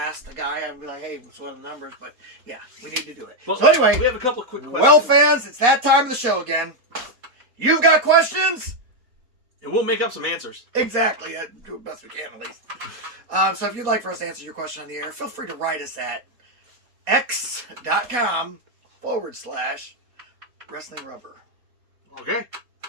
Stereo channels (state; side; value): late; left; 4.2 ms